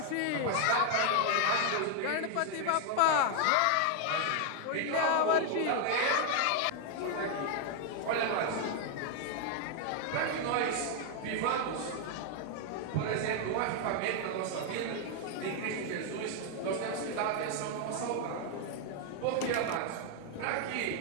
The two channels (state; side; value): different; both; correlation 0.00